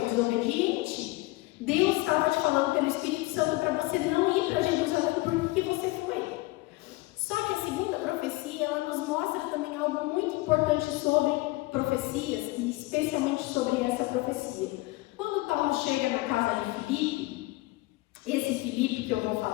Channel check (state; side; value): quieter; right; 21.1 dB